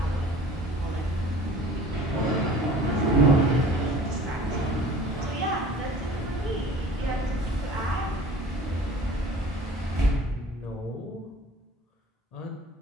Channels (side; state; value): both; normal; correlation 0.45